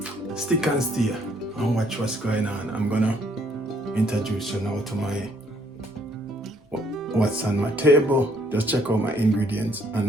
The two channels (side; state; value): both; normal; correlation 0.66